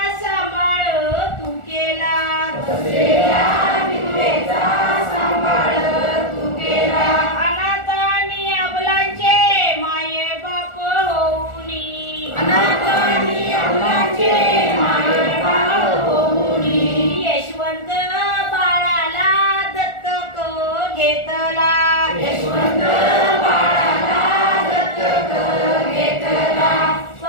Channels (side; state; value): right; late; 1.4 ms